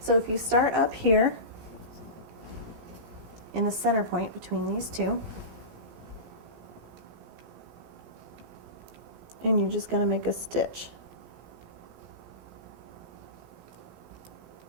if you start up here in the center point between these two, and you're just going to make a stitch.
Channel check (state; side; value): late; left; 17 ms